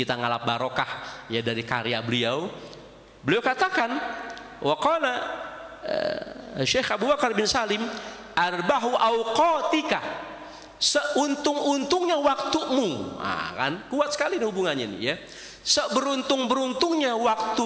ngalap barokah, ya, dari karya beliau. Beliau katakan, waqala Syekh Abu Bakar bin Salim, arbahu awqatika, seuntung-untungnya waktumu. Nah, kan kuat sekali hubungannya nih, ya. Seberuntung-beruntungnya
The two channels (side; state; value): both; identical; correlation 1.00